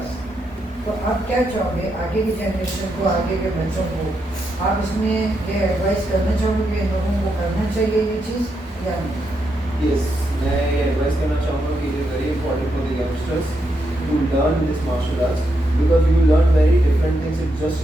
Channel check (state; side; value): normal; both; correlation 0.82